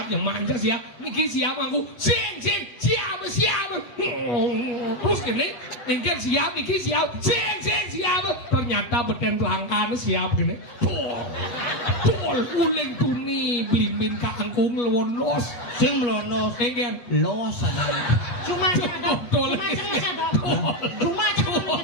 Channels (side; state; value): right; late; 8.3 ms